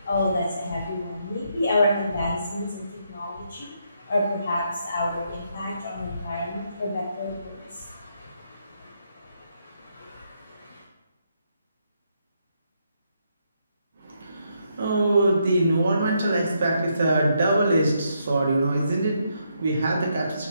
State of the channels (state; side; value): inverted; both; correlation -0.77